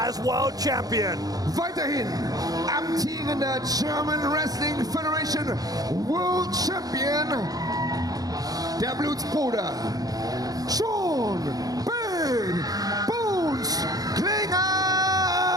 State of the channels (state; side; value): late; left; 0.18 ms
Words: world champion. Weiterhin amtierender German Wrestling Federation World Champion, der Blutsbruder John Bad Bones Klinger!